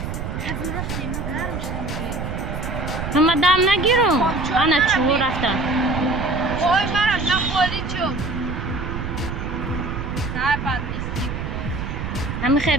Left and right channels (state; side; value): noise; right; rumble, 5 dB below the sound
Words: همه دم نگیرم انا چو رفتن وای مرم نخوری چون همه خیلی